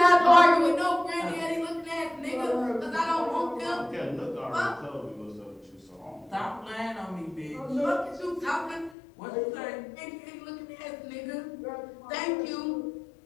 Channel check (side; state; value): right; drops out; at 9.0 s